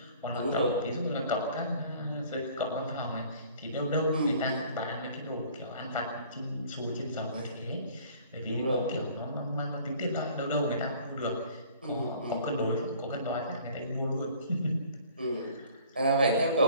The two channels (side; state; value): both; inverted; correlation -0.52